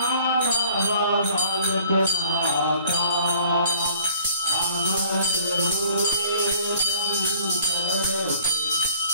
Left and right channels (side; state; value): both; inverted; correlation -0.52